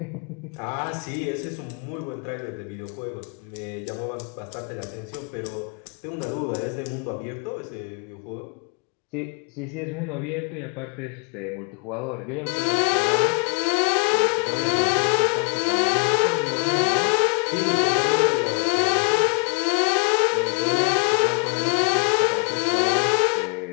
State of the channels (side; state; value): right; quieter; 37.6 dB